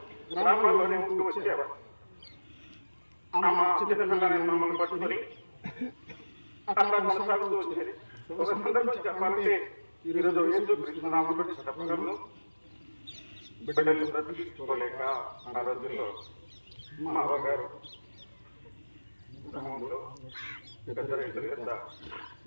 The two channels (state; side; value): inverted; both; correlation -1.00